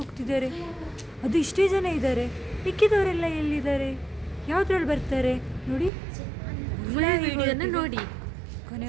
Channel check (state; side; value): drops out; left; at 5.9 s